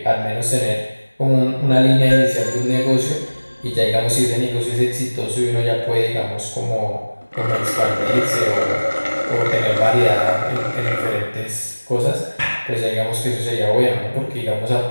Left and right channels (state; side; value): inverted; both; correlation -1.00